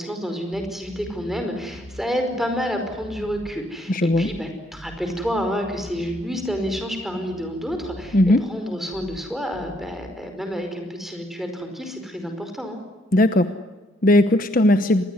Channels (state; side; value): normal; both; correlation 0.70